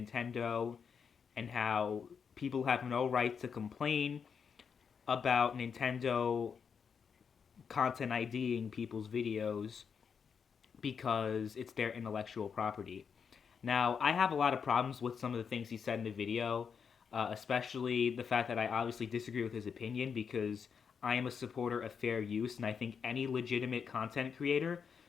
and how people have no right to complain about Nintendo content IDing people's videos because it's their intellectual property. Now, I have a lot of problems with some of the things he said in the video, especially the fact that I obviously disagree with his opinion because I am a supporter of fair use, and I think any legitimate content creator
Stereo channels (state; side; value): quieter; right; 6.5 dB